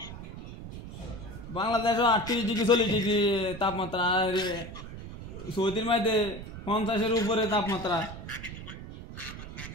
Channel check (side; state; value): right; noise; rumble, 11 dB below the sound